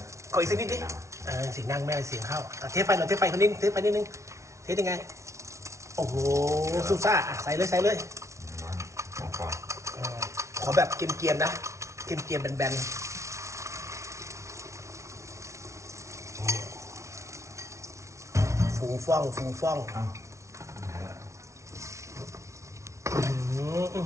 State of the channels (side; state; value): left; late; 0.14 ms